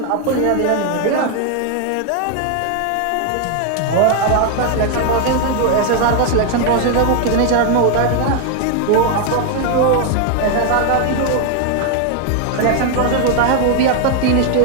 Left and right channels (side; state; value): both; different; correlation 0.00